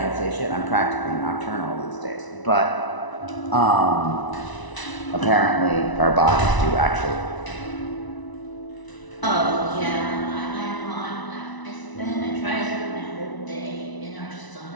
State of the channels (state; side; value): late; right; 1.0 ms